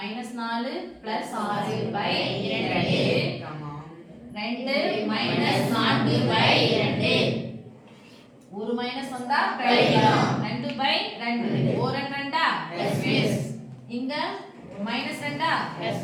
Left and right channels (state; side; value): identical; both; correlation 1.00